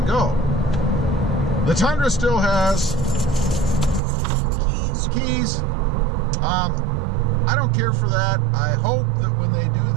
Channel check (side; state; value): left; drops out; at 4.0 s